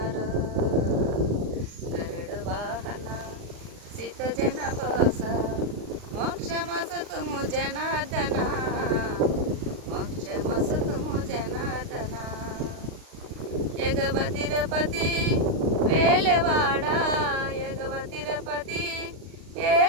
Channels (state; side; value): late; left; 39 ms